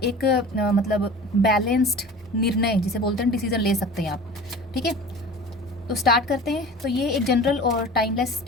मतलब बैलेंस्ड निर्णय जिसे बोलते हैं डिसीजन ले सकते हैं आप। ठीक है, तो स्टार्ट करते हैं। तो ये एक जनरल और टाइमलेस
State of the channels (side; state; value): both; normal; correlation 0.39